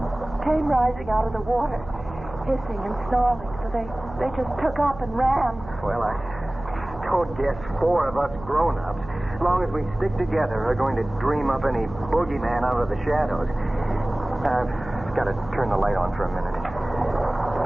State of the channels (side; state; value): right; noise; hum, 15 dB below the sound